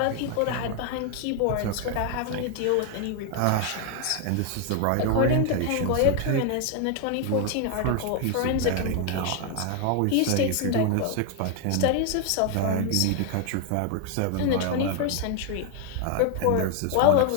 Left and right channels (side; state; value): both; different; correlation 0.00